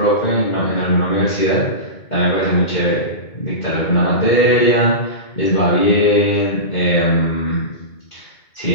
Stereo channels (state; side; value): late; right; 2.2 ms